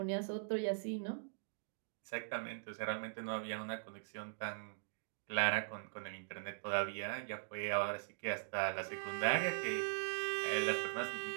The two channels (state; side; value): silent; left; digital silence